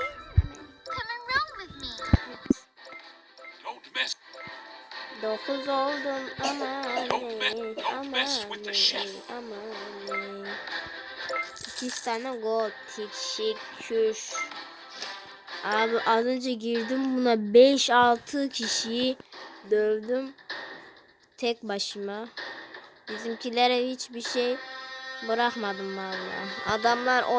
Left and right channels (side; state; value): both; identical; correlation 1.00